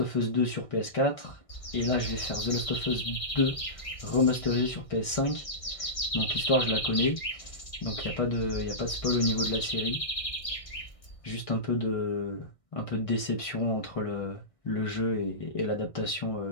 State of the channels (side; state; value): right; late; 1.6 ms